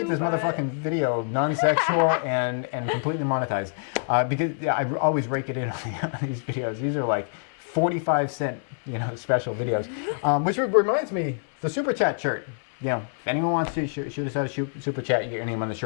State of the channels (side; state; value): right; silent; 61 dB below the other